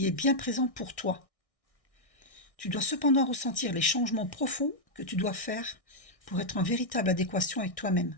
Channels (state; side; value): late; right; 1.6 ms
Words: est bien présent pour toi. Tu dois cependant ressentir les changements profonds que tu dois faire pour être en véritable adéquation avec toi-même.